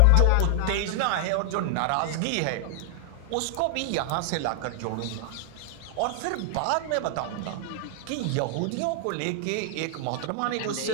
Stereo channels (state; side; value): different; both; correlation 0.00